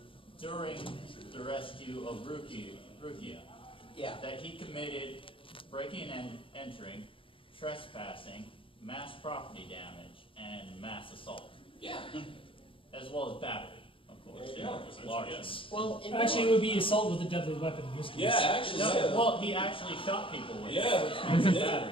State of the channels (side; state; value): right; late; 0.25 ms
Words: during the rescue of Rukia, Yeah. that he committed breaking and entering, trespassing, mass property damage, and mass assault, Yeah. as well as battery, of course. There you go. It's large. Yes. Well, Actually, it would be assault with a deadly weapon in this case. Yeah, actually. No, Yeah. well, he actually shot people with it, Yeah, which he makes it did. battery.